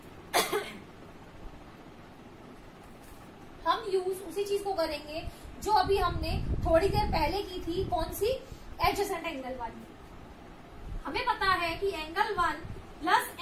हम यूज उसी चीज को करेंगे जो अभी हमने थोड़ी देर पहले की थी, कौन सी, एडजेसेंट एंगल वाली। हमें पता है कि एंगल 1 प्लस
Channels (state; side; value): identical; both; correlation 1.00